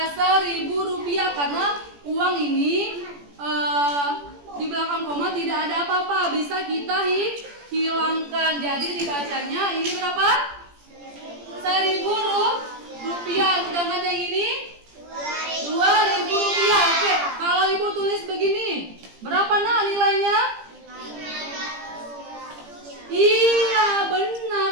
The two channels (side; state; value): left; late; 17 ms